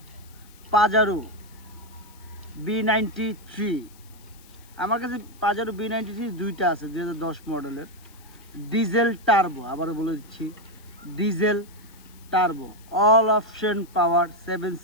পাজারো B93। আমার কাছে পাজারো B93 দুইটা আছে, 2010 মডেলের ডিজেল টার্বো। আবারও বলে দিচ্ছি, diesel turbo, all option power, 7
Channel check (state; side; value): noise; left; hiss, 25 dB below the sound